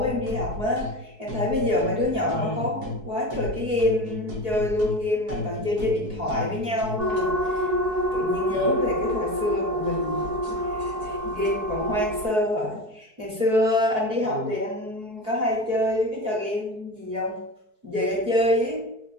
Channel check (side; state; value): left; late; 4.6 ms